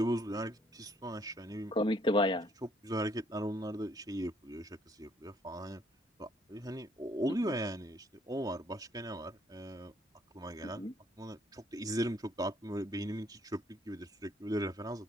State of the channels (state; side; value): normal; both; correlation 0.66